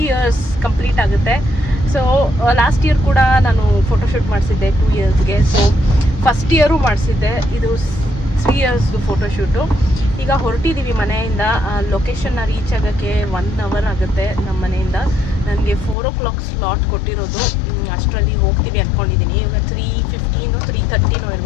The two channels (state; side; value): drops out; right; at 16.0 s